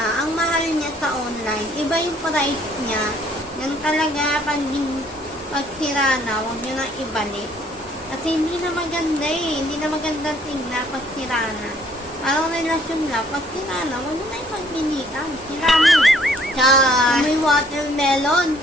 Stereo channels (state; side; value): normal; both; correlation 0.62